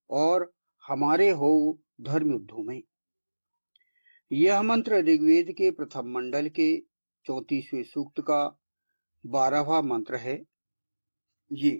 और हमारे हो धर्म युद्धों में। यह मंत्र ऋग्वेद के प्रथम मंडल के 34वें सूक्त का 12वां मंत्र है।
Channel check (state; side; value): inverted; both; correlation -1.00